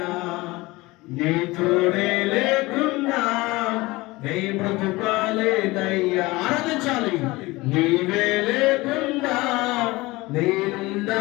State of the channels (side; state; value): right; quieter; 21.2 dB